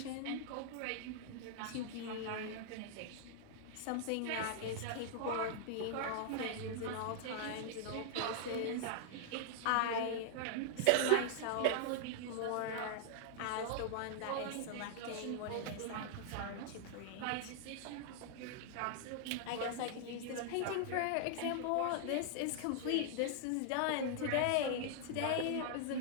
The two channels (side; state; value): both; different; correlation -0.01